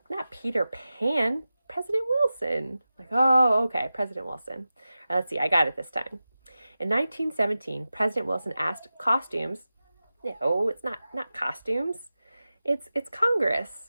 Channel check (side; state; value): both; inverted; correlation -0.94